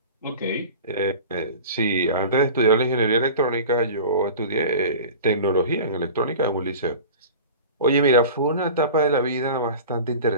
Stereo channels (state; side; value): inverted; both; correlation -0.37